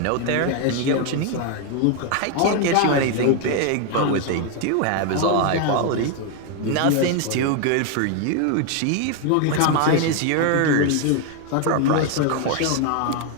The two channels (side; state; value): both; different; correlation 0.01